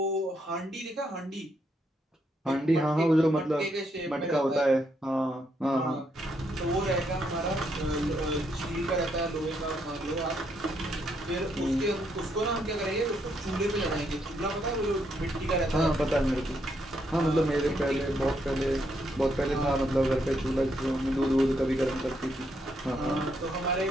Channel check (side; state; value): both; normal; correlation 0.76